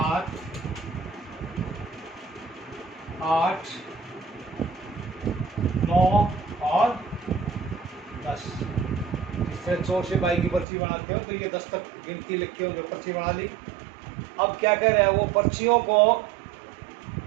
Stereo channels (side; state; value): left; drops out; at 10.7 s